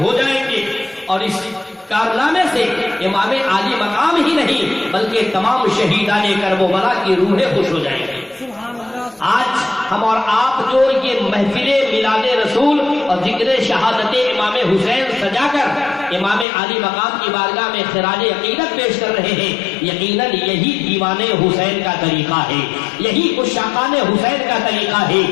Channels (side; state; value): right; drops out; at 16.4 s